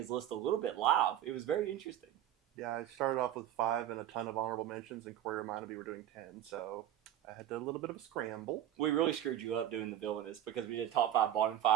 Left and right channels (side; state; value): left; quieter; 11.6 dB